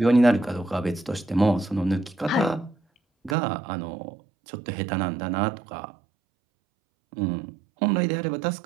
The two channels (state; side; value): drops out; left; at 3.4 s